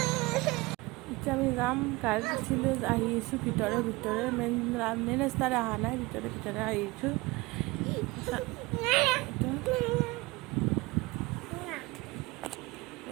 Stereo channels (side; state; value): left; quieter; 22.6 dB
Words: এতিয়া আমি যাম, গাড়ীত উঠিলোঁ, আহি আছোঁ ভিতৰে মেইন ৰাস্তাৰে অহা নাই, ভিতৰে আহিছোঁ।